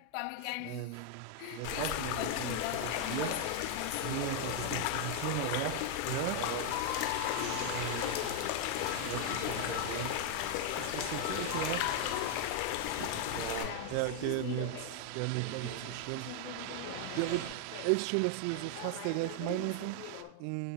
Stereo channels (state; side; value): different; both; correlation 0.00